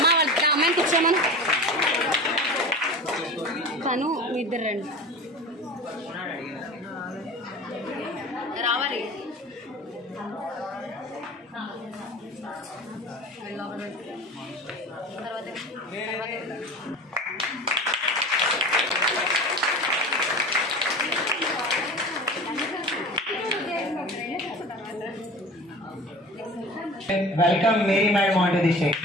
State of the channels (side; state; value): both; normal; correlation 0.35